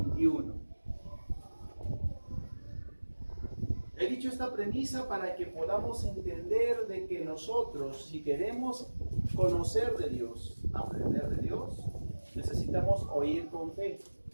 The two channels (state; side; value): inverted; both; correlation -1.00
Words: He dicho esta premisa para que podamos entender de que nosotros, si queremos conocer de Dios, aprender de Dios, necesitamos oír con fe.